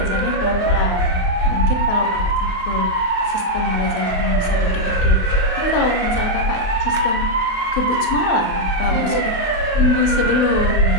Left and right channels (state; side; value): late; right; 28 ms